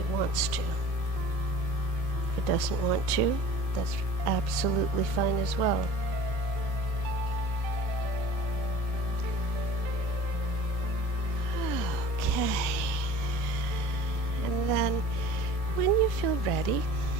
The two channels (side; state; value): left; late; 18 ms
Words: wants to. If it doesn't want to, that's absolutely fine as well. Okay, and then when you feel ready,